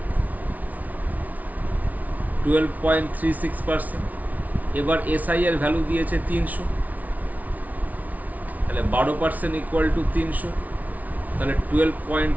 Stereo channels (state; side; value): late; left; 0.074 ms